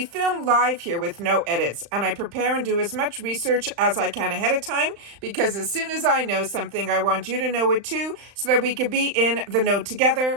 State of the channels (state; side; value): late; left; 35 ms